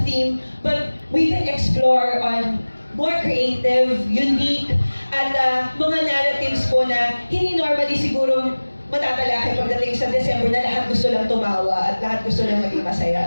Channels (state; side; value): inverted; both; correlation -1.00